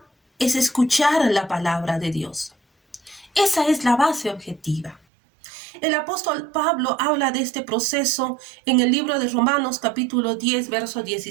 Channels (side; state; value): left; drops out; at 5.0 s